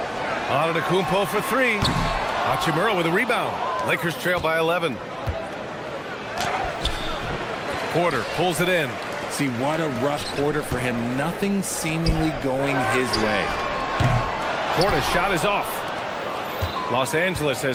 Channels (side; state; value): both; identical; correlation 1.00